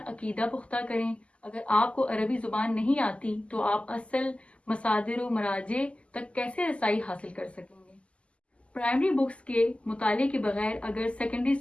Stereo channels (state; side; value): late; right; 0.057 ms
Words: عقیدہ پختہ کریں۔ اگر آپ کو عربی زبان نہیں آتی تو آپ اصل مصادر و مراجع تک کیسے رسائی حاصل کر سکیں گے؟ پرائمری بکس کے مطالعے کے بغیر اگر سیکنڈری